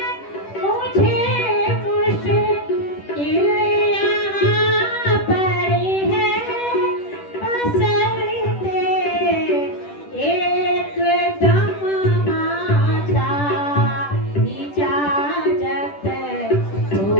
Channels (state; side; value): late; right; 10 ms